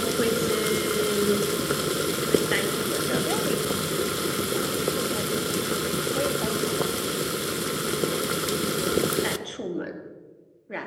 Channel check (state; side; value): identical; both; correlation 1.00